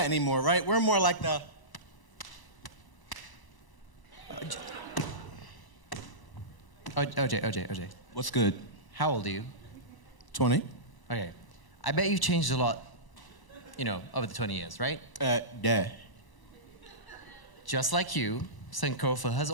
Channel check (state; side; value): late; right; 1.0 ms